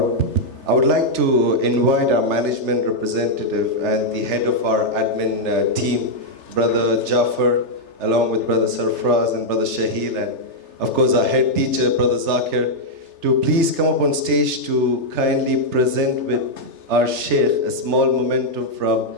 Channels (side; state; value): left; late; 3.3 ms